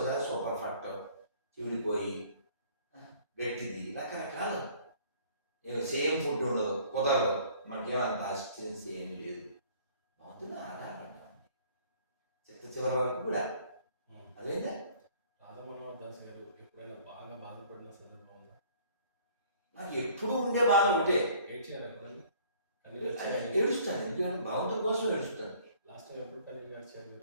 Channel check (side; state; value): both; inverted; correlation -0.55